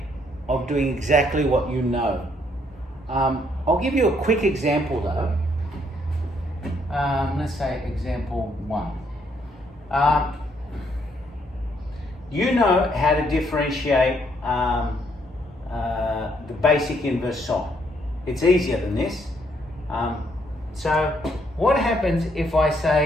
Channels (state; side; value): normal; both; correlation 0.70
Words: of doing exactly what you know. I'll give you a quick example though. Let's say example 1. You know how to differentiate the basic inverse sine. It's easier than this. So what happens if I